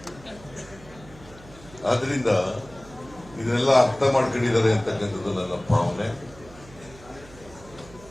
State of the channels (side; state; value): right; noise; hum, 21 dB below the sound